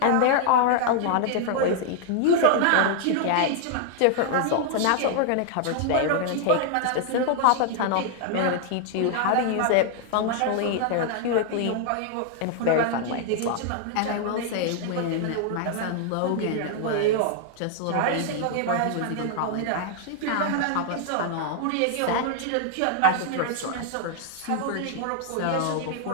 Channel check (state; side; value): different; both; correlation 0.00